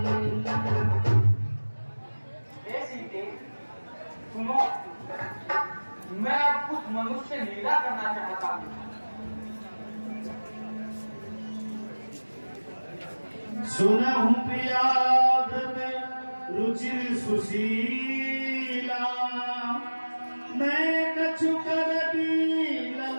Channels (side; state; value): both; inverted; correlation -1.00